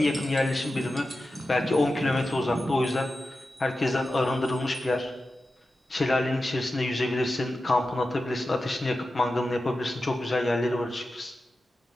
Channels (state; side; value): normal; both; correlation 0.92